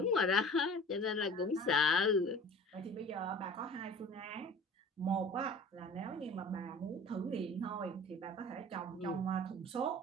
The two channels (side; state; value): both; normal; correlation 0.43